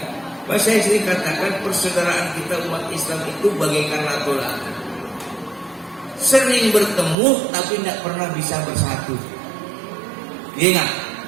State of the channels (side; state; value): left; drops out; at 7.2 s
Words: Saya sering katakan persaudaraan kita umat Islam itu bagaikan latu-latu. Sering bertemu tapi tidak pernah bisa bersatu. Iya nggak?